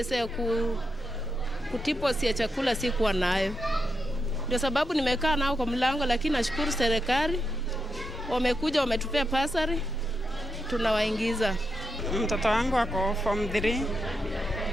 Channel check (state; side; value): normal; both; correlation 0.85